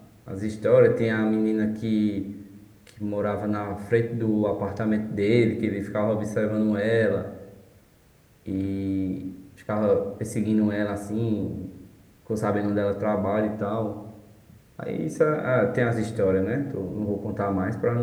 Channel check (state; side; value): identical; both; correlation 1.00